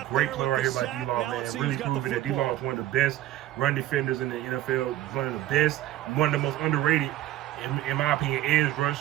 great play right here by D-Law, man. Really proving that D-Law is one of the best run defenders in the NFL, one of the best, one of the most underrated, in my opinion, edge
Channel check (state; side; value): quieter; left; 14.1 dB